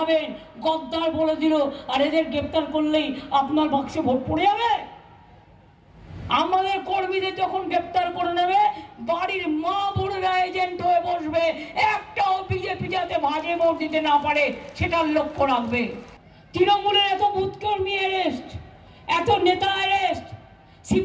গদ্দার বলে দিল আর এদের গ্রেফতার করলেই আপনার বাক্সে ভোট পড়ে যাবে? আমাদের কর্মীদের যখন গ্রেফতার করে নেবে, বাড়ির মা বোনেরা এজেন্ট হয়ে বসবে, একটাও বিজেপি যাতে ভাগে ভোট দিতে না পারে সেটার লক্ষ্য রাখবে। তৃণমূলের এত বুথ কর্মী অ্যারেস্ট, এত নেতা অ্যারেস্ট,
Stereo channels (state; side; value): identical; both; correlation 1.00